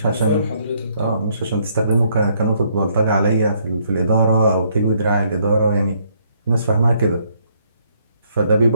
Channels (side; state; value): both; inverted; correlation -0.69